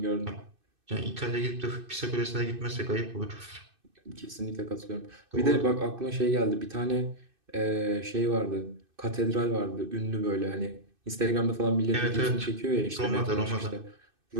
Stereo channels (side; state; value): left; late; 2.6 ms